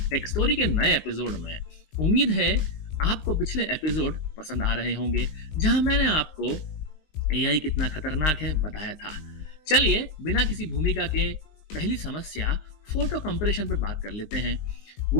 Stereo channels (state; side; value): late; right; 19 ms